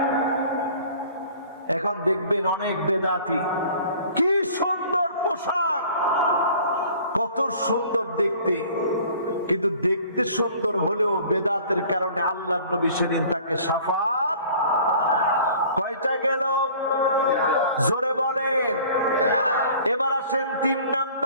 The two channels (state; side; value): inverted; both; correlation -0.49